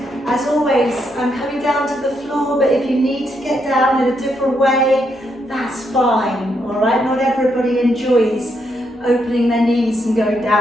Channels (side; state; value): both; normal; correlation 0.78